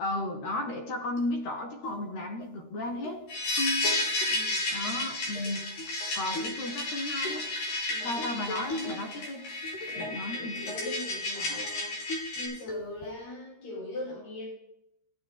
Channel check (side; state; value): right; late; 13 ms